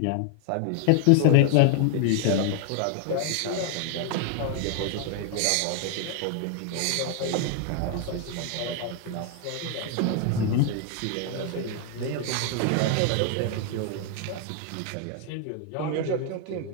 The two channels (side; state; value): both; different; correlation 0.00